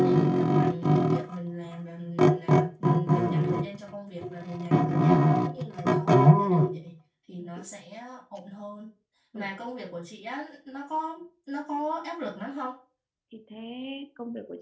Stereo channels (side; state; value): both; identical; correlation 1.00